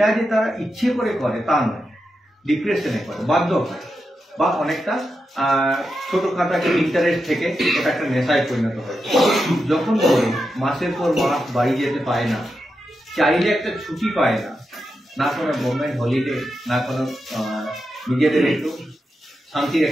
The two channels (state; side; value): normal; both; correlation 0.88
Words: যে তারা ইচ্ছে করে করে তা নয়, ডিপ্রেশনে করে, বাধ্য হয়, বা অনেকটা ছোটখাটো একটা ইন্টারেস্ট থেকে ওটা একটা নেশায় পরিণত হয়। যখন ধরো মাসের পর মাস বাড়ি যেতে পায় না, চাইলে একটা ছুটি পায় না, না কোনো গভর্নমেন্ট হলিডে, না কোনো নিজেদের একটু শান্তির